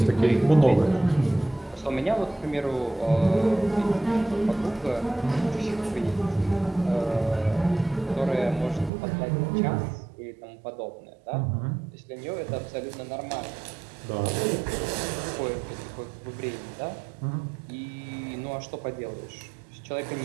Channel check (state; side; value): drops out; left; at 8.9 s